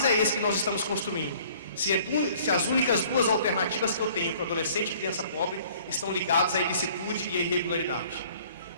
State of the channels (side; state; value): both; inverted; correlation -0.54